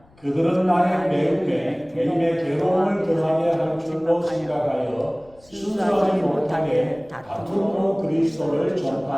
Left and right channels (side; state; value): left; noise; rumble, 28 dB below the sound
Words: 그들은 나의 매움에 매임의 괴로움을 더하게 할 줄로 생각하여 순수하지 못하게 다툼으로 그리스도를